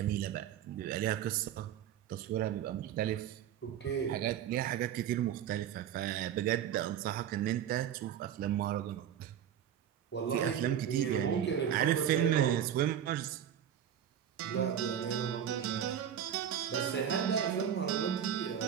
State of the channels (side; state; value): left; quieter; 9.6 dB